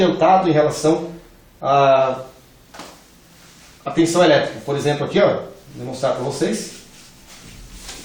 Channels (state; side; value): identical; both; correlation 1.00